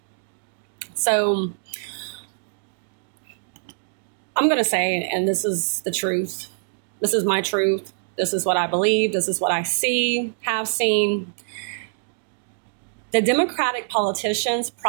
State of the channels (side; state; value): left; silent; digital silence